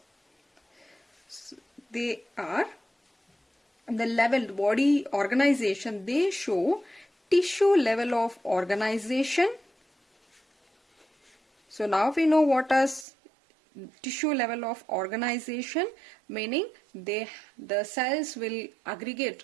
they are the level body organization. They show tissue level of organization. So now we know what is tissue level of organization, meaning the cells will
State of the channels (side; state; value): left; drops out; at 13.1 s